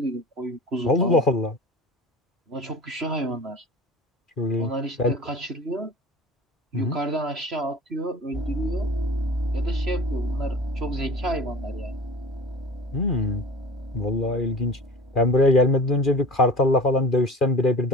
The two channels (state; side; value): normal; both; correlation 0.39